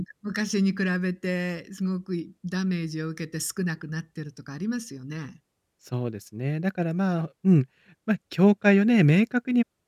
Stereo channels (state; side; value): identical; both; correlation 1.00